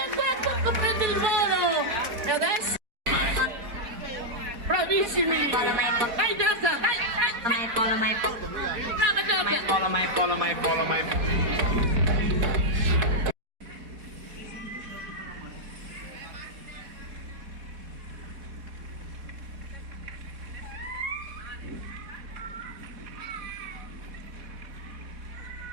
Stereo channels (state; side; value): late; left; 4.1 ms